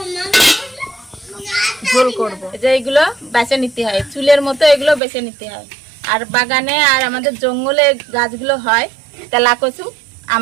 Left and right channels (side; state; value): left; drops out; at 5.0 s